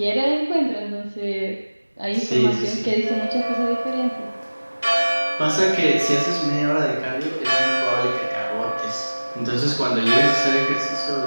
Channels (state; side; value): inverted; both; correlation -1.00